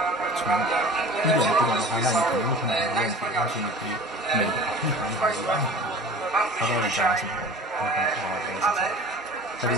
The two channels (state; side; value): normal; both; correlation 0.41